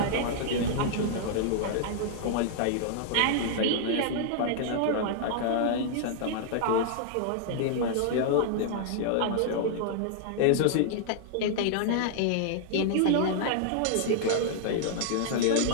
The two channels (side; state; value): both; different; correlation -0.01